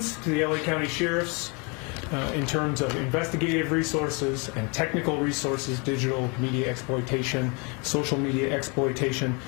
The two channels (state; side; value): quieter; right; 31.4 dB